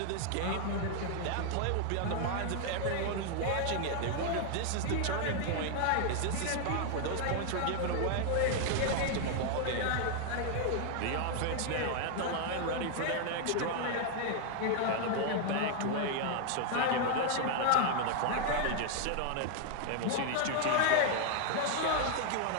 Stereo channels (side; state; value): both; different; correlation 0.00